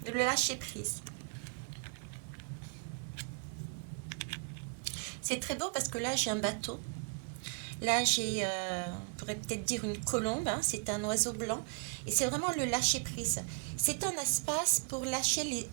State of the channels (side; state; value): left; quieter; 38.9 dB